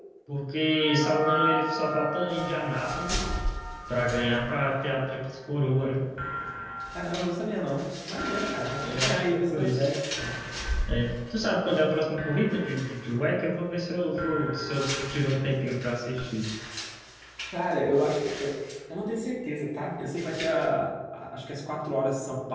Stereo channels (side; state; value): both; identical; correlation 1.00